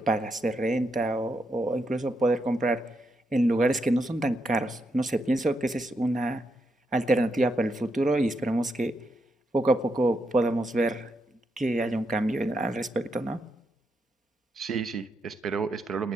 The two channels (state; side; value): normal; both; correlation 0.82